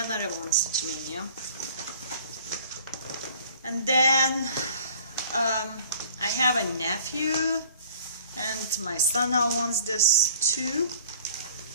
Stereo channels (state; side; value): inverted; both; correlation -0.51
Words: one, Stitch Maynia. And then I have a nephew, and my son now wants this too.